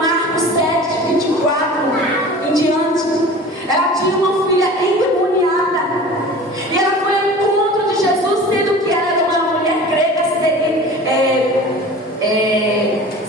7, 24 em diante. Ela tinha uma filha endemoniada. E ela foi ao encontro de Jesus, sendo que ela era uma mulher grega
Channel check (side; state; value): both; normal; correlation 0.39